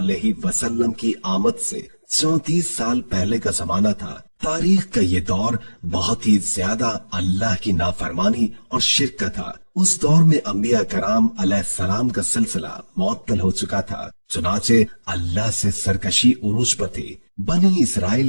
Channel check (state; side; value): inverted; both; correlation -1.00